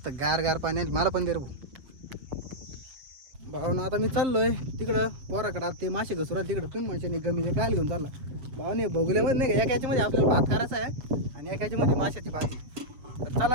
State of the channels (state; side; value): late; left; 7.4 ms